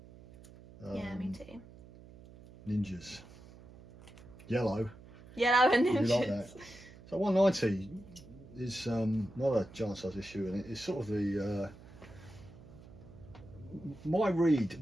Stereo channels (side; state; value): right; noise; hum, 20 dB below the sound